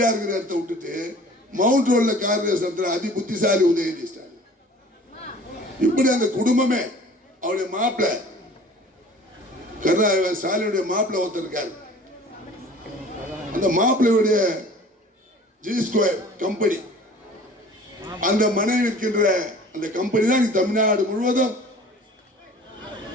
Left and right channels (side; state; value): both; normal; correlation 0.47